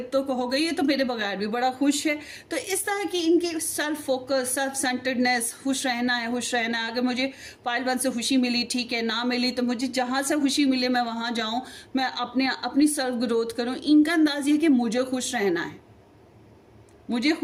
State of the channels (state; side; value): identical; both; correlation 1.00